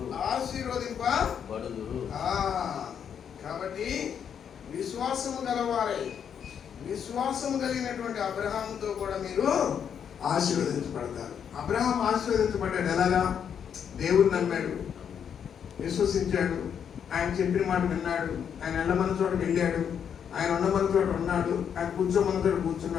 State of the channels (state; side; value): quieter; right; 8.0 dB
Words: కాబట్టి విశ్వాసము గలవారై, విశ్వాసము కలిగినటువంటి అబ్రహాముతో కూడా మీరు ఆశీర్వదించబడతారు. అబ్రహాం ఆశీర్వదించబడ్డాడు. ఎలాగా? దేవుడు నమ్మాడు, విశ్వసించాడు, ఆయన చెప్పిన మాట విన్నాడు, ఆయన వెళ్ళమన్న చోటకి వెళ్ళాడు, ఆయన ఉండమన్న చోట ఉన్నాడు, ఆయన కూర్చోమన్న చోట